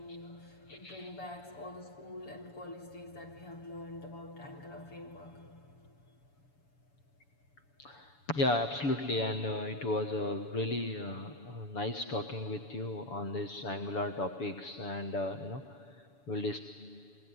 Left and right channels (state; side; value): late; right; 7.0 ms